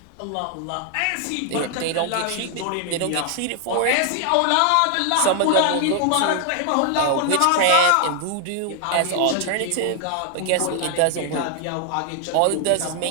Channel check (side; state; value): both; different; correlation 0.00